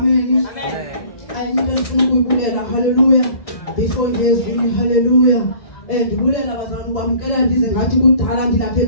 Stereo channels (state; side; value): late; right; 1.7 ms